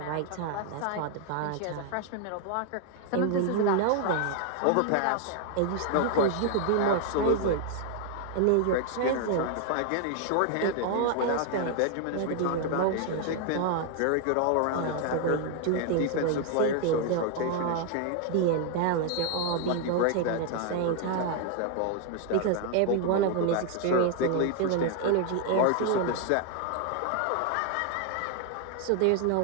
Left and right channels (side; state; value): both; different; correlation 0.00